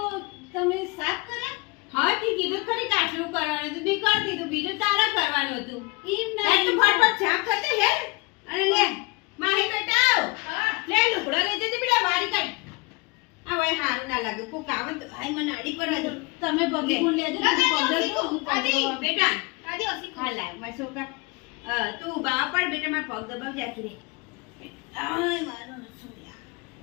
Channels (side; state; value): right; quieter; 27.9 dB